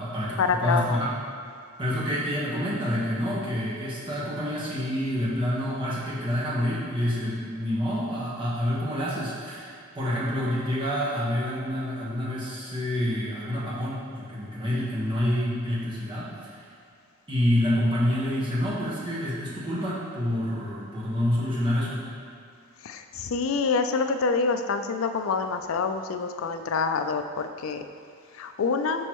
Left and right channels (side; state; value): both; normal; correlation 0.51